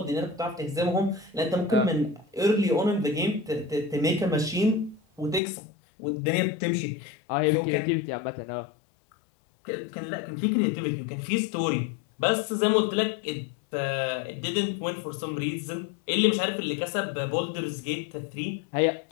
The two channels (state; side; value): drops out; right; at 5.4 s